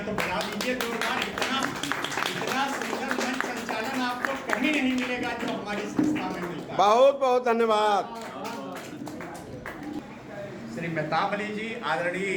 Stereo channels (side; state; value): both; identical; correlation 1.00